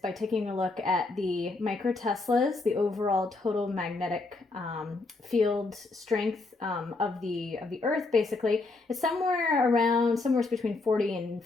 taking a look at the microteslas, the overall total magnetic field strength of the Earth. Basically, it's somewhere between 40 and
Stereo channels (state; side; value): quieter; right; 3.5 dB